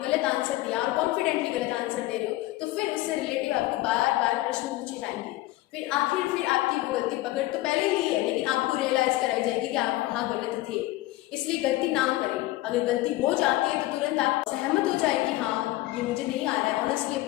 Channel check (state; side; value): quieter; right; 17.8 dB